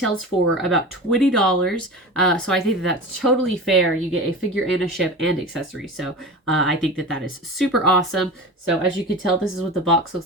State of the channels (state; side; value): normal; both; correlation 0.31